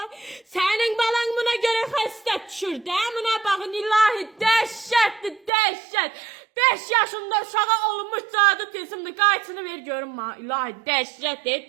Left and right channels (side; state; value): left; drops out; at 5.5 s